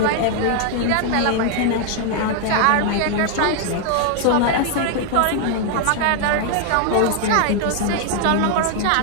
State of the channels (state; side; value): different; both; correlation 0.00